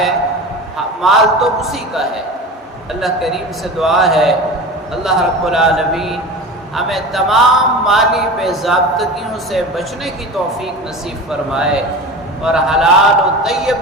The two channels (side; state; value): both; normal; correlation 0.32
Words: مال تو اسی کا ہے۔ اللہ کریم سے دعا ہے اللہ رب العالمین ہمیں تمام مالی بے ضابطگیوں سے بچنے کی توفیق نصیب فرمائے اور حلال و